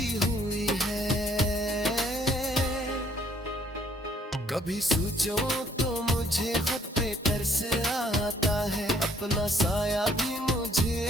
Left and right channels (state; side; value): normal; both; correlation 0.64